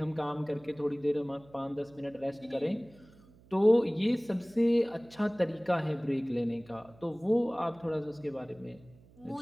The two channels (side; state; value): right; noise; hum, 26 dB below the sound